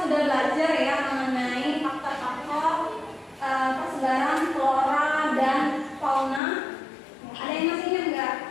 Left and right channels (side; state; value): right; drops out; at 6.4 s